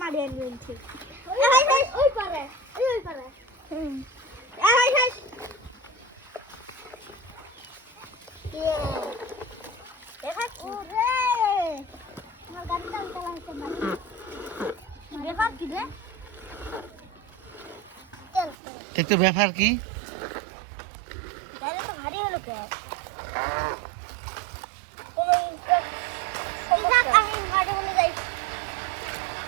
মারি আনছি ওই পারে ওই পারে একটু ব্যাপার কি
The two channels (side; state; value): left; drops out; at 18.6 s